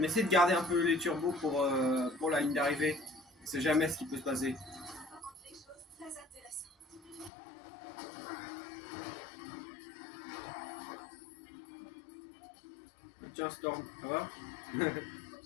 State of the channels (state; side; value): drops out; right; at 7.3 s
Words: essaie de garder un peu les turbos pour la ligne d'arrivée. On sait jamais ce qui peut se passer. Tiens, Storm, ça va?